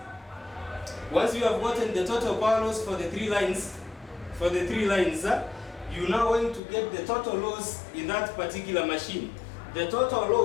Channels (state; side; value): drops out; right; at 6.6 s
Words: Once you have gotten the total power loss for the 3 lines, you now going to get the total loss in that particular machine. The total